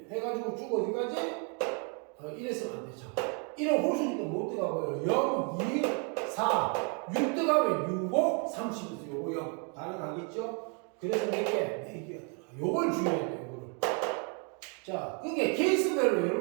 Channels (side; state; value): left; quieter; 37.7 dB